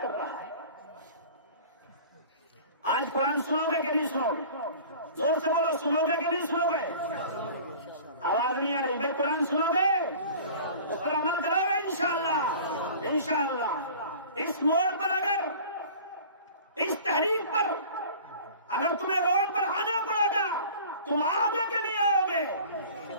کر رہا ہے. آج قرآن سنو گے کہ نہیں سنو گے؟ زور سے بولو سنو گے کہ نہیں سنو گے؟ آواز نہیں آ رہی بھائی. قرآن سنو گے اس پر عمل کرو گے انشاءاللہ. انشاءاللہ اس موڑ پر اگر اس تحریک پر اگر تمہیں روڈ پر آنا پڑے گا تم آؤ گے کہ نہیں آؤ گے؟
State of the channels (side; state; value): both; inverted; correlation -0.43